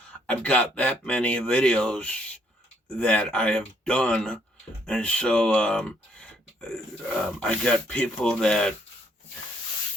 I've got that many videos that I have done, and so I got people that,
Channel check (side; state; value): both; normal; correlation 0.69